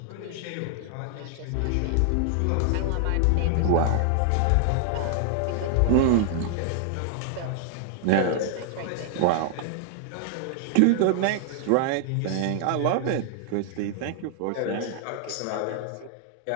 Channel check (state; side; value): different; both; correlation 0.00